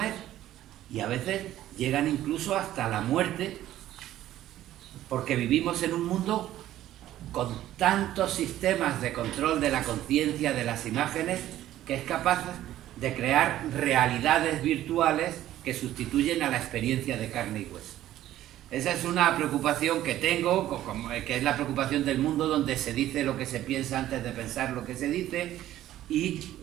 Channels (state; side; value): quieter; left; 13.4 dB